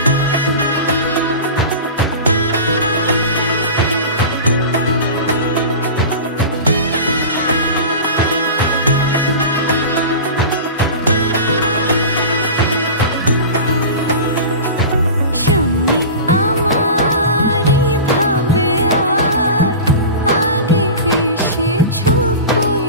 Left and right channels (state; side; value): inverted; both; correlation -0.31